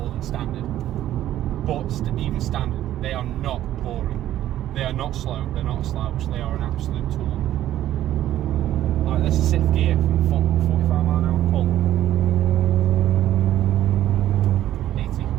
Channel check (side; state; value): left; quieter; 12.8 dB